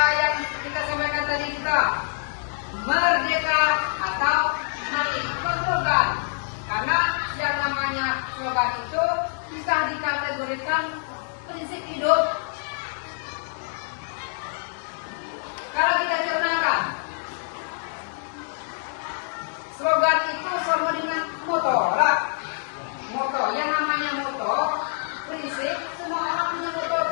yang kita sampaikan tadi juga. Merdeka atau mati. Itu slogan. Karena yang namanya slogan itu bisa dikategorikan prinsip hidup. Kalau kita cernakan, slogan itu sama dengan moto lah. Moto, yang namanya moto, prinsip, semua orang punya moto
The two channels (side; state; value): right; silent; digital silence